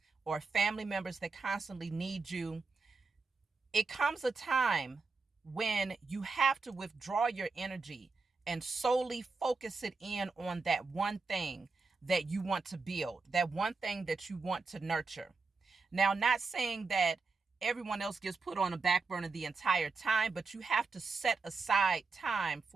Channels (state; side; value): quieter; left; 4.3 dB